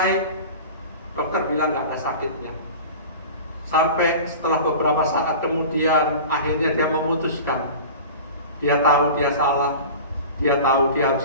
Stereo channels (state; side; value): inverted; both; correlation -0.36